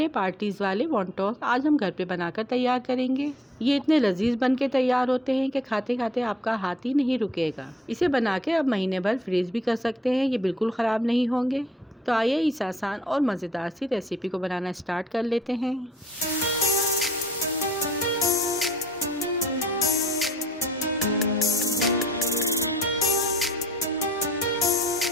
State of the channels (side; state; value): both; normal; correlation 0.61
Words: पार्टीज़ वाले वॉन्टॉन्स आज हम घर पे बनाकर तैयार करेंगे। ये इतने लजीज बन के तैयार होते हैं कि खाते खाते आपका हाथ ही नहीं रुकेगा। इसे बना के आप महीने भर फ्रीज भी कर सकते हैं, ये बिल्कुल ख़राब नहीं होंगे। तो आइए इस आसान और मज़ेदार सी रेसिपी को बनाना स्टार्ट कर लेते हैं।